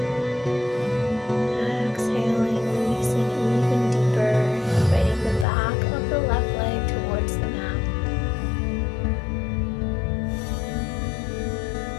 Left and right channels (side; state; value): right; drops out; at 5.5 s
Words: Exhaling, releasing even deeper, inviting the back of the left leg towards the mat.